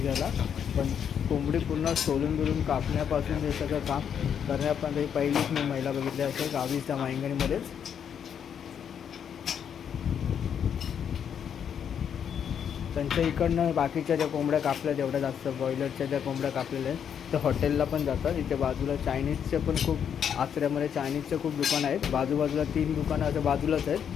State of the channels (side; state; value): right; quieter; 8.2 dB